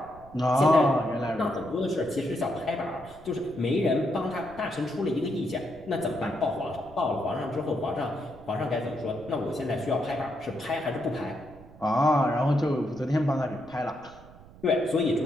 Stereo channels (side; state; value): right; noise; rumble, 21 dB below the sound